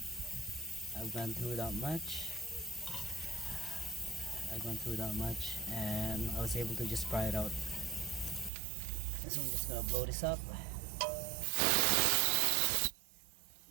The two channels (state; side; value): drops out; left; at 8.5 s